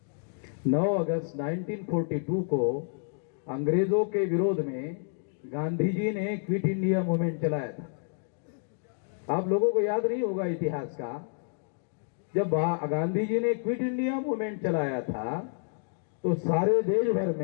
9 अगस्त 1942 को अंग्रेजों के विरोध में गांधी जी ने क्विट इंडिया मूवमेंट चलाया था। आप लोगों को याद नहीं होगा इतिहास का, जब गांधी जी ने क्विट इंडिया मूवमेंट चलाया था तो सारे देश भर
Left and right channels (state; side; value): silent; right; 58 dB below the other